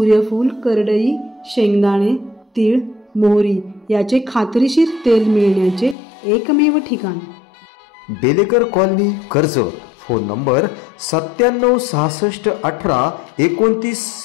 करडई, शेंगदाणे, तीळ, मोहरी याचे खात्रीशीर तेल मिळण्याचे एकमेव ठिकाण। Belekar colony, Karjat. Phone number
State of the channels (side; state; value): right; drops out; at 6.0 s